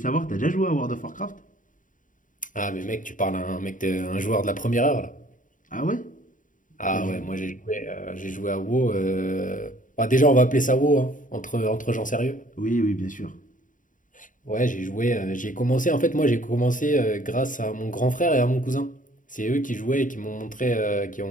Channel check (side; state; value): right; late; 0.38 ms